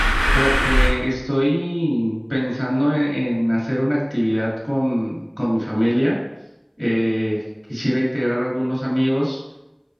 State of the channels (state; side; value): identical; both; correlation 1.00